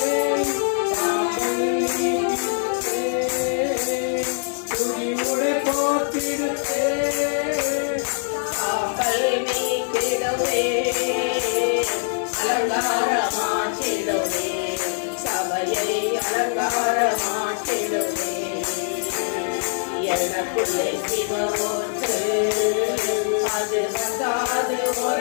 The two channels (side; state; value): right; silent; 62 dB below the other